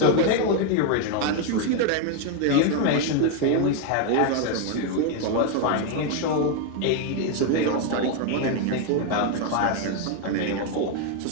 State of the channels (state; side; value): different; both; correlation 0.01